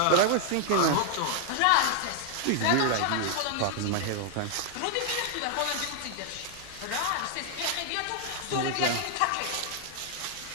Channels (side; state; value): both; different; correlation 0.00